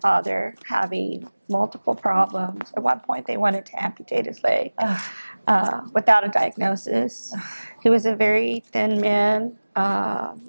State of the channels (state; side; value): inverted; both; correlation -1.00